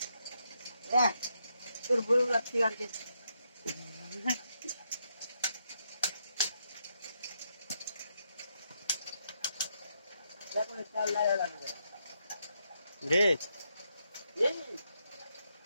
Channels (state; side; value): inverted; both; correlation -0.80